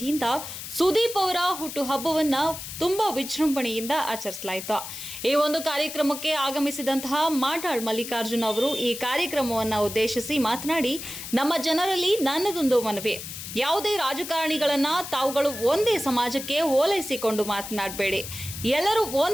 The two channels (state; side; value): noise; left; hiss, 9 dB below the sound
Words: ಸುದೀಪ್ ಅವರ ಹುಟ್ಟುಹಬ್ಬವನ್ನ ತುಂಬಾ ವಿಜೃಂಭಣೆಯಿಂದ ಆಚರಿಸಲಾಯಿತು. ಈ ಒಂದು ಕಾರ್ಯಕ್ರಮಕ್ಕೆ ಆಗಮಿಸಿದಂತಹ ಮಾಡಾಳ್ ಮಲ್ಲಿಕಾರ್ಜುನ್ ಅವರು ಈ ಕಾರ್ಯಕ್ರಮವನ್ನು ಉದ್ದೇಶಿಸಿ ಮಾತನಾಡಿ, ನಮ್ಮ ಜನರಲ್ಲಿ ನನ್ನದೊಂದು ಮನವಿ, ಯಾವುದೇ ರಾಜಕಾರಣಿಗಳನ್ನ ತಾವುಗಳು ಒಂದೇ ಸಮಾಜಕ್ಕೆ ಓಲೈಸಿಕೊಂಡು ಮಾತನಾಡಬೇಡಿ. ಎಲ್ಲರೂ